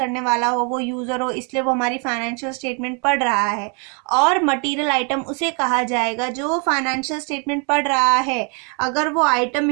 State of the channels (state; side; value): quieter; left; 36.2 dB